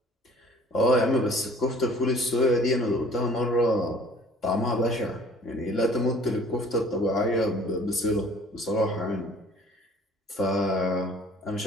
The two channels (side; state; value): both; normal; correlation 0.52